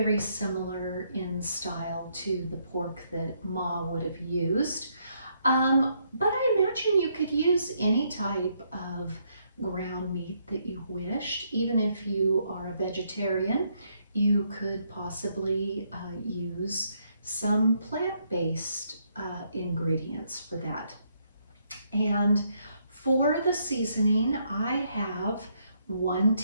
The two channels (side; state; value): both; inverted; correlation -0.74